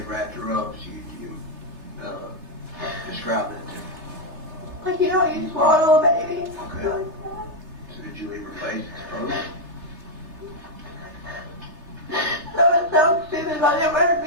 wrapped her up, so you describe that to me. Like, you know, you swaddle a baby. Okay. Like that. So did you leave her face exposed? So it sounds stupid, but I didn't want her to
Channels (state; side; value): late; left; 3.3 ms